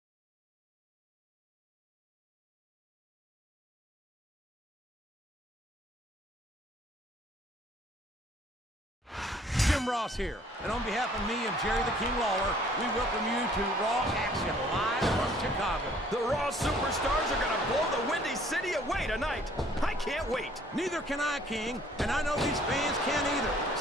Jim Ross here, and on behalf of me and Jerry the King Lawler, we welcome you to Raw Action live from Chicago. The Raw Superstars are going to blow the Windy City away tonight. I can't wait. Neither can I, King, and I know these fans can't either,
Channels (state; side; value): normal; both; correlation 0.58